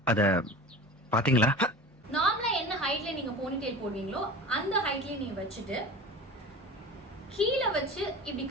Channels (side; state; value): both; normal; correlation 0.35